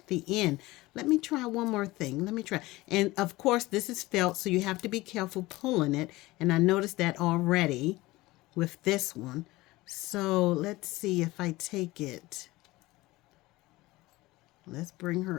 the end. Let me try one more thing. Let me try. And of course, this is felt, so you have to be careful pulling it. And I noticed that already with this one. So let's see if I take it. Let's bring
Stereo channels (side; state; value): right; quieter; 19.6 dB